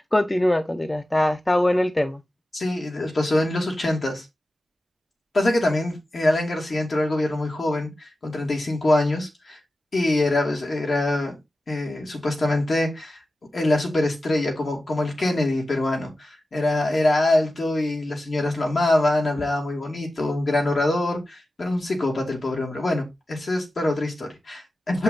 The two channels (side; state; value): both; normal; correlation 0.94